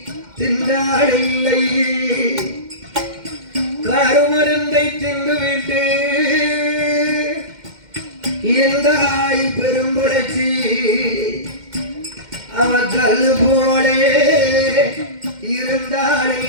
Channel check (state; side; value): late; left; 2.1 ms